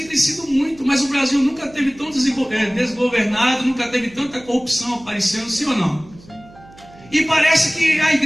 crescido muito, mas o Brasil nunca teve tão desgovernado, nunca teve tanta corrupção aparecendo, sim ou não? E parece que a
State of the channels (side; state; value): right; noise; hum, 23 dB below the sound